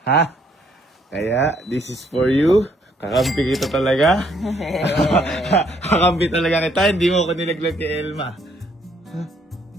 ha? Kaya, this is for you. Kakampi kita talaga. Kakampi talaga kita. Hindi mo ako nilaglag kay Elma.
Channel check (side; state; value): both; normal; correlation 0.68